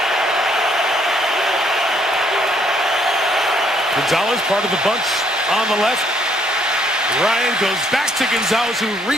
Gonzalez, part of the bunch on the left. Ryan goes back to Gonzalez, who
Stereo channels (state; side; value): normal; both; correlation 0.68